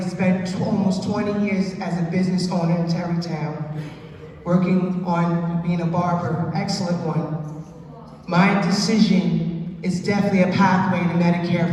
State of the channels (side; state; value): both; identical; correlation 1.00